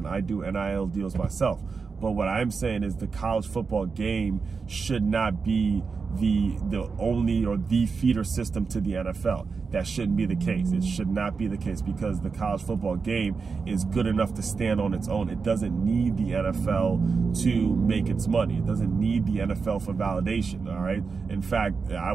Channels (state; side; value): quieter; left; 5.0 dB